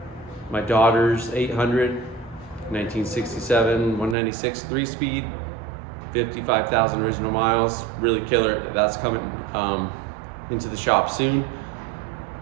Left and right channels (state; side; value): drops out; left; at 4.2 s